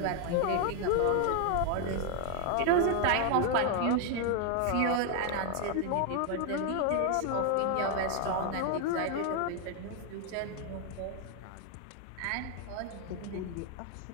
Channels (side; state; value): both; different; correlation 0.00